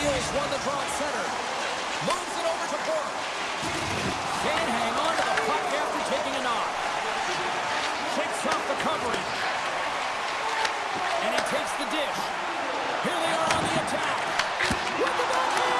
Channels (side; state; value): both; identical; correlation 1.00